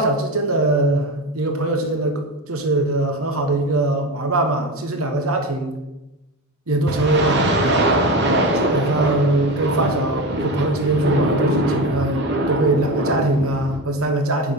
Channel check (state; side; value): normal; both; correlation 0.23